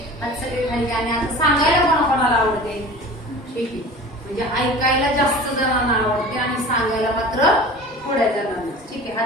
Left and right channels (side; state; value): both; normal; correlation 0.39